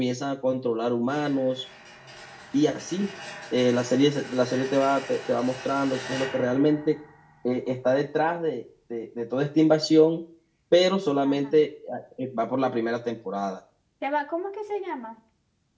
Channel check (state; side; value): identical; both; correlation 1.00